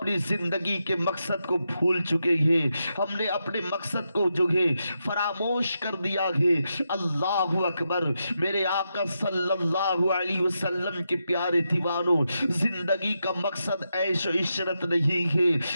زندگی کے مقصد کو بھول چکے ہیں، ہم نے اپنے مقصد کو جو ہے فراموش کر دیا ہے۔ اللہ اکبر! میرے آقا صلی اللہ علیہ وسلم کے پیارے دیوانوں، زندگی کا مقصد عیش و عشرت نہیں ہے،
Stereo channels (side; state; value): both; inverted; correlation -0.85